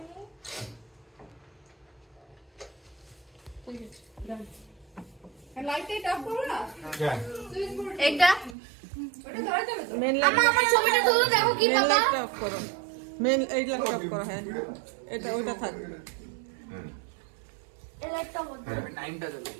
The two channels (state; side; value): drops out; left; at 8.6 s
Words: লাইট অফ করো না। হ্যাঁ। এইটা ওটা ধরে যাবে তো। মেন লাইট আমার ছবিটা তুলে দেখো কি মেন বাবা। লাইট অফ করো। মেন এই লাইট অফ করো। হ্যাঁ এটা ওইটা থাক। এই লাইটটা বন্ধ। টাইমটা চলে।